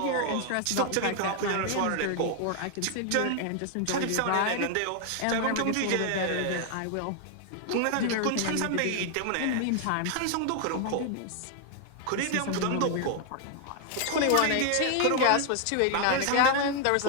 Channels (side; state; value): both; different; correlation 0.00